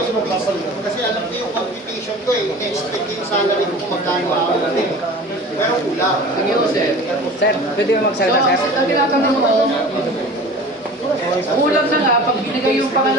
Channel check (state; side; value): normal; both; correlation 0.39